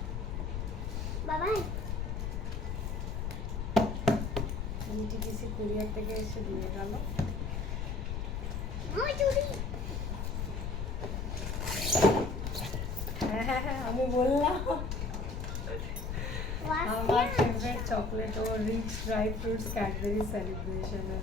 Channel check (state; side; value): noise; left; rumble, 2 dB below the sound